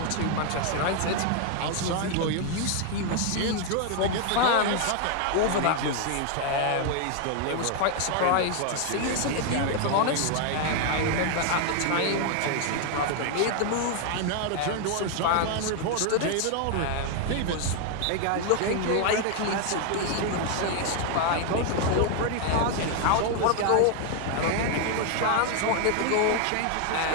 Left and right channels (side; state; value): both; different; correlation 0.00